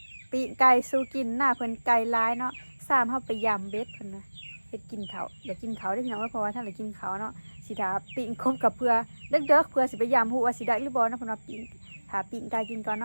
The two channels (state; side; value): inverted; both; correlation -1.00